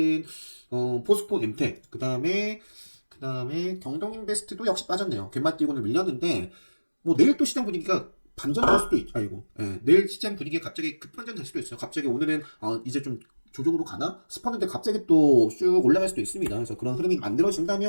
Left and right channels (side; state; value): both; inverted; correlation -1.00